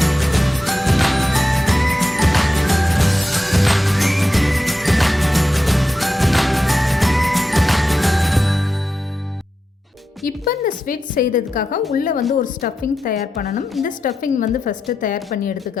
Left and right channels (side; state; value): both; normal; correlation 0.89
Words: இப்போ இந்த ஸ்வீட் செய்கிறதுக்காக உள்ளே வந்து ஒரு ஸ்டஃபிங் தயார் பண்ணணும். இந்த ஸ்டஃபிங் வந்து ஃபஸ்ட்டு தயார் பண்ணி